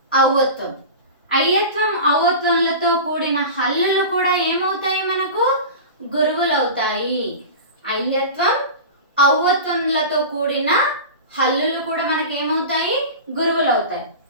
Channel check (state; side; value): inverted; both; correlation -0.30